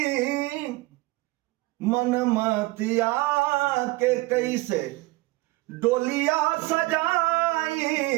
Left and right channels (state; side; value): quieter; left; 21.2 dB